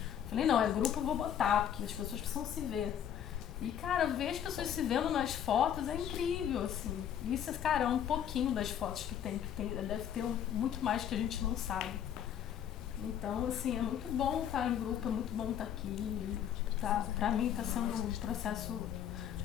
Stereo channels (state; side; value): quieter; right; 9.7 dB